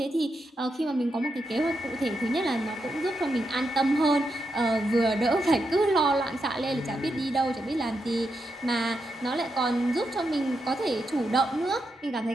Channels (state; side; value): normal; both; correlation 0.84